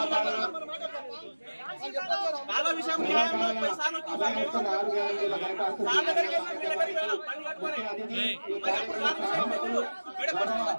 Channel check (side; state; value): both; inverted; correlation -1.00